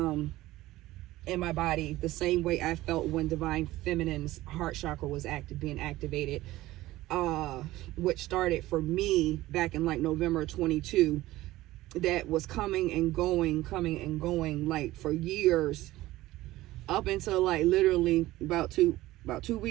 in my body the same way I felt when divine feminine's heart chakra was being activated, which started for me back in like November 22. That was coming and going like for years, up until like literally about two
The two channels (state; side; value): quieter; left; 16.9 dB